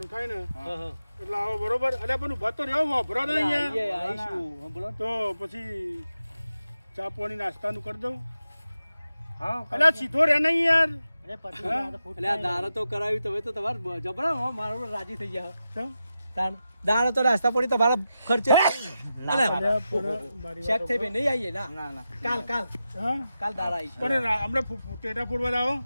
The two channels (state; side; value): inverted; both; correlation -0.90